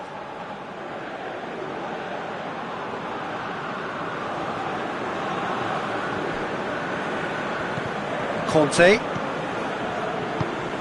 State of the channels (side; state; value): both; identical; correlation 1.00